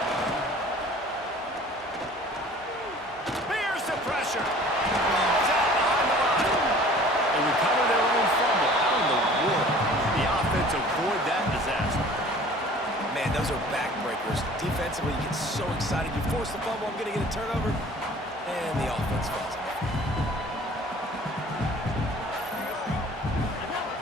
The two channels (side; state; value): both; normal; correlation 0.48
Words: Here's the pressure. Ball's out behind the line. They recover their own fumble. How in the world did the offense avoid that disaster? Man, those are backbreakers. Defensively, you get so excited. You force the fumble, I'm going to get a turnover, and the offense falls off.